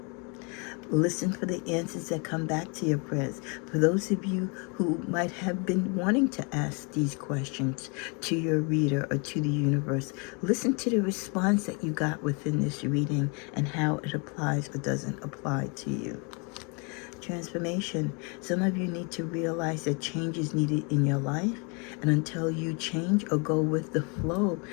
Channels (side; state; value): right; quieter; 33.2 dB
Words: Listen for the answers that come back to your prayers. For those of you who might have been wanting to ask these questions to your reader or to the universe, listen to the response that you got within this reading and how it applies or doesn't apply to you. transformation. Some of you need to realize that change is needed in your life. And until you change or go with the flow